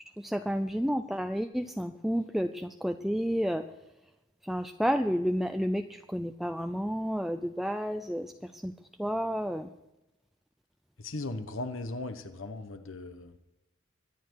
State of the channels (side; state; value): both; normal; correlation 0.94